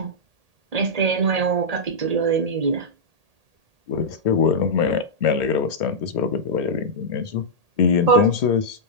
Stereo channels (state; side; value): late; left; 1.8 ms